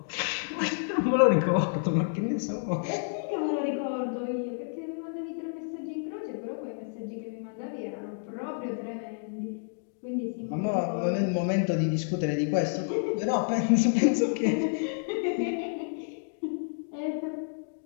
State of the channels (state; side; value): silent; right; digital silence